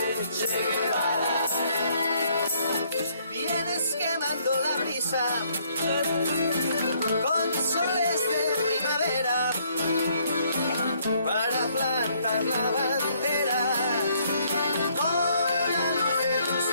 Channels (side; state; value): both; inverted; correlation -0.67